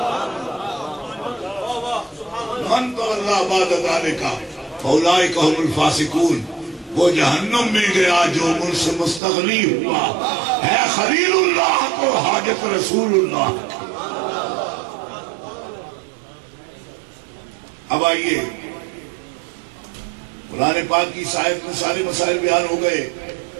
من تولا بعد ذالک فاولئک هم الفاسقون، وہ جہنم میں گیا جو مجھ سے مستغنی ہوا ہے. خلیل اللہ کو حاجت رسول اللہ. اب آئیے، قرآن پاک کی آیت میں سارے مسائل بیان ہو گئے،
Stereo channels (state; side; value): drops out; left; at 9.2 s